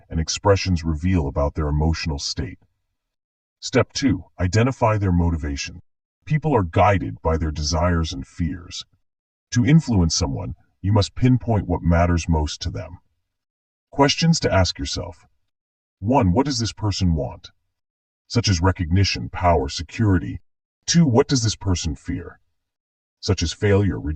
and expressions reveal about their emotional state. Step 2, identify their motivation. People are guided by their desires and fears. To influence someone, you must pinpoint what matters most to them. Questions to ask yourself. 1, what does this person want? Such as recognition, power, security. 2, what does this person fear? Such as failure,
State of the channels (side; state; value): both; identical; correlation 1.00